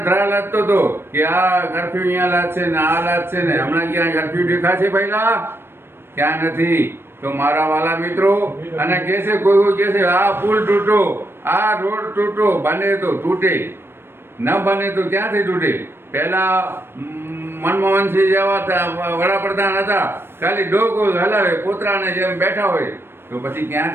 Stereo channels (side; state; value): left; late; 0.11 ms